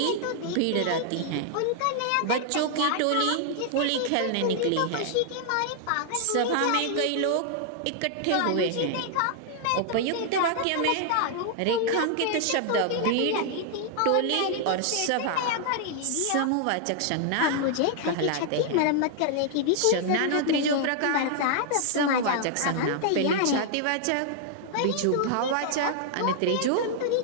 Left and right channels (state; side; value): different; both; correlation 0.00